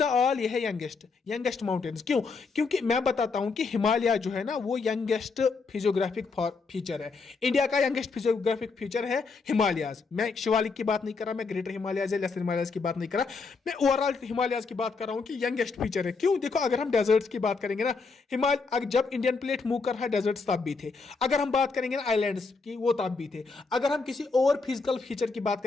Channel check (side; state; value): right; quieter; 4.5 dB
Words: ऑल, ये है यंगेस्ट माउंटेन्स। क्यों? क्योंकि मैं बताता हूं कि हिमालय जो है ना, वो यंगेस्ट फिजियोग्राफिक फीचर है। इंडिया का यंगेस्ट फिजियोग्राफिक फीचर है हिमालयाज। मैं शिवालिक की बात नहीं कर रहा, मैं ग्रेटर हिमालयाज या लेसर हिमालयाज की बात नहीं कर रहा, मैं ओवरऑल हिमालयाज की बात कर रहा हूं कि यंगेस्ट फीचर है। क्यों? देखो, अगर हम डेजर्ट्स की बात करेंगे ना, हिमालय जब इंडियन प्लेट मूव कर रहा है, डेजर्ट्स तब भी थे। अगर हम बात करेंगे ना आइलैंड्स की, वो तब भी थे। अगर हम किसी और फिजिकल फीचर की बात